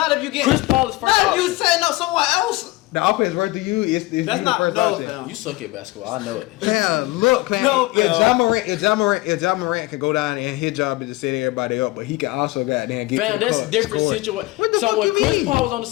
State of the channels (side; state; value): right; quieter; 20.4 dB